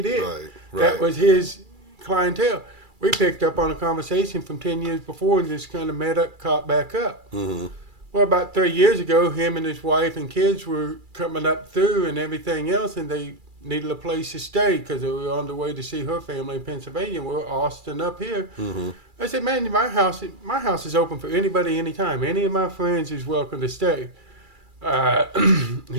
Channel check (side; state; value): left; late; 2.3 ms